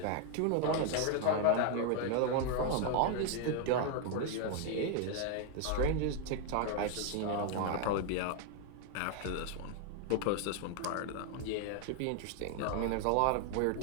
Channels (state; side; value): different; both; correlation 0.00